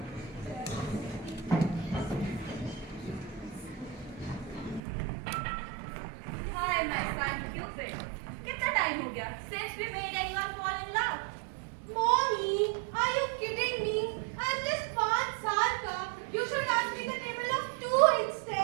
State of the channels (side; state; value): left; drops out; at 4.8 s